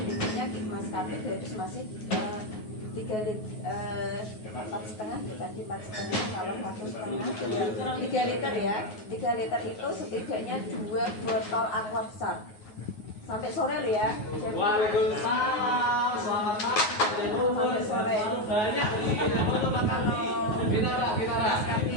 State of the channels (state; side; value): late; right; 9.4 ms